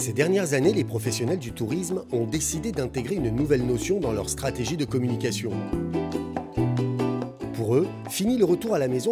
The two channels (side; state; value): both; identical; correlation 1.00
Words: Ces dernières années, les professionnels du tourisme ont décidé d'intégrer une nouvelle notion dans leur stratégie de communication. Pour eux, fini le retour à la